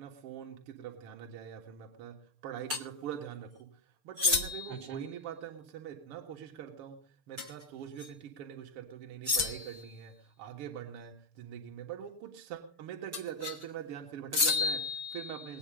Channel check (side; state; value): left; late; 6.7 ms